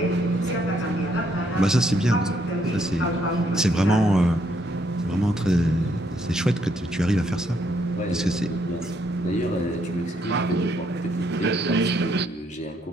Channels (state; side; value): normal; both; correlation 0.72